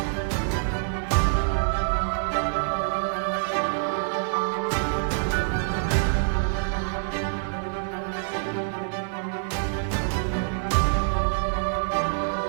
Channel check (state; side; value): silent; left; 60 dB below the other